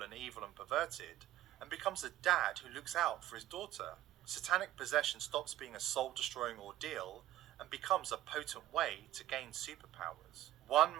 and evil and perverted, and becomes a dad who looks out for his daughter. Satanic possession stops being a soul-destroying ordeal and becomes a potent way to gain superpowers. One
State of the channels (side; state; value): left; quieter; 14.0 dB